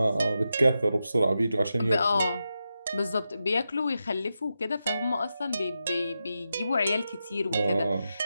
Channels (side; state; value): both; inverted; correlation -0.88